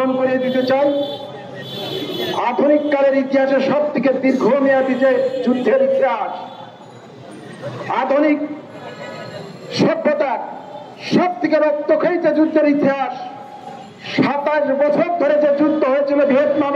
করিয়ে দিতে চাই। আধুনিক কালের ইতিহাসে সব থেকে দীর্ঘমেয়াদী যে যুদ্ধের ইতিহাস, আধুনিক সভ্যতার সব থেকে রক্তক্ষয়ী যে যুদ্ধের ইতিহাস, 27 বছর ধরে যে যুদ্ধ হয়েছিল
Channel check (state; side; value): identical; both; correlation 1.00